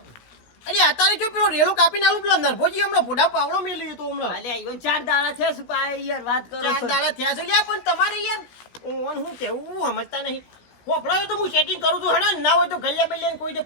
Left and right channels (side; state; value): right; late; 16 ms